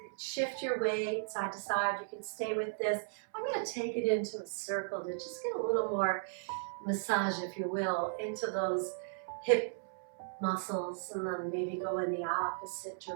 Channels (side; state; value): left; silent; 54 dB below the other